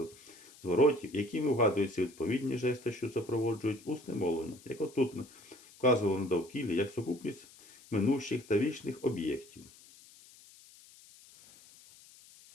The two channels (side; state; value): left; noise; hiss, 23 dB below the sound